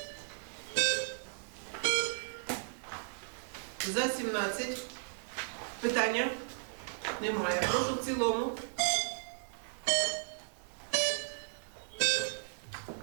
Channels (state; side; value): silent; left; digital silence